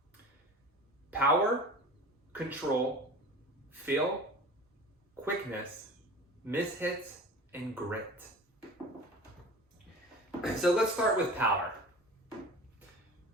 Power, control, feel, quickness, mishits, and grit. So let's start with power.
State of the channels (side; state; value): both; normal; correlation 0.38